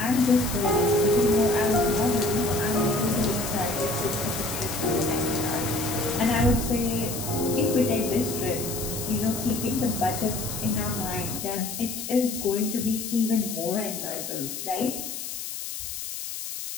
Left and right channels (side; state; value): left; noise; hiss, 7 dB below the sound